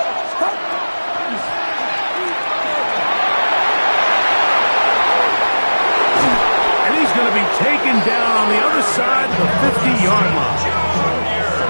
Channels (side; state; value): both; inverted; correlation -1.00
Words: he's going to be taken down on the other side of the 50-yard line.